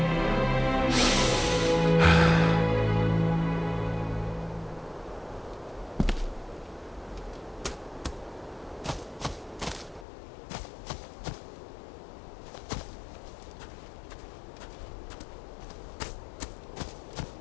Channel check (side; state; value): right; drops out; at 10.1 s